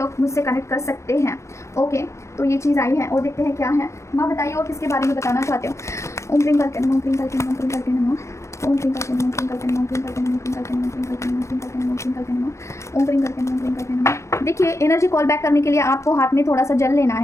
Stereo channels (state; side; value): late; right; 0.14 ms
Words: मुझसे कनेक्ट कर सकते हैं, ओके। तो ये चीज़ आई है और देखते हैं क्या है। माँ बताइए और किसके बारे में बताना चाहते हो। ओम क्रीम करके नमो, क्रीम करके नमो, क्रीम करके नमो, ओम क्रीम करके नमो, क्रीम करके नमो, क्रीम करके नमो, क्रीम करके नमो, क्रीम करके नमो, क्रीम करके नमो, क्रीम करके नमो, ओम क्रीम करके नमो, क्रीम करके नमो। देखिए एनर्जी कॉल बैक करने के लिए आपको हाथ में थोड़ा सा जल लेना